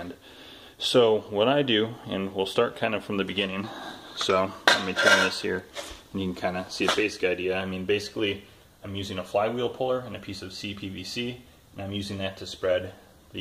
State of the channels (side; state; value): both; identical; correlation 1.00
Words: So what I do, and we'll start kind of from the beginning, so let me turn this here and you can kind of see a basic idea. I mean, basically I'm using a flywheel puller and a piece of CPVC, and I'm using that to spread